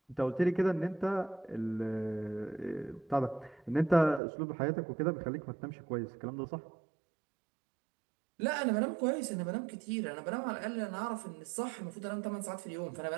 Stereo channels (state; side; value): drops out; left; at 4.2 s